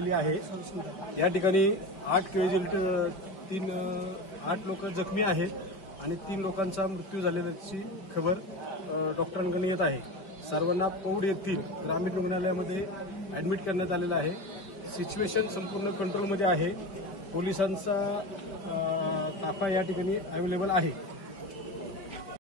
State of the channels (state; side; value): late; right; 5.1 ms